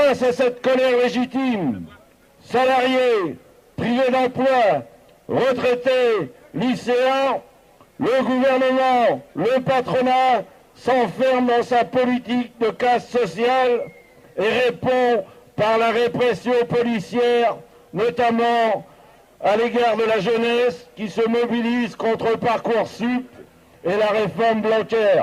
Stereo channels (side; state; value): both; identical; correlation 1.00